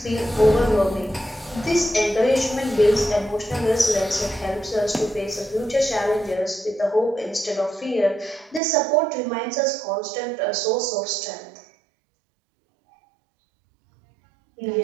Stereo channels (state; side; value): drops out; left; at 8.6 s